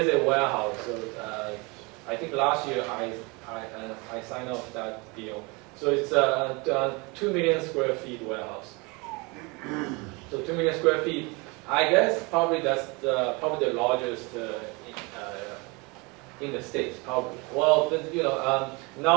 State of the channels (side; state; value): left; quieter; 27.8 dB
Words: a warehouse. So I think last year I signed off that deal. So it's a 2 million square feet warehouse. So 2 million square feet. I guess probably that's probably the largest in the States. Probably. Well, but,